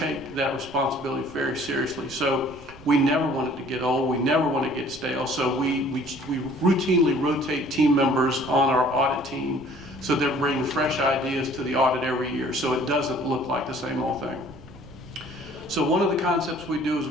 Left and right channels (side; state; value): right; noise; rumble, 20 dB below the sound